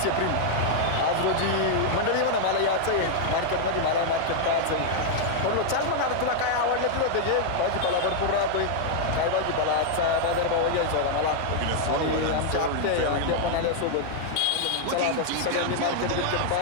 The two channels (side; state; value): both; different; correlation -0.01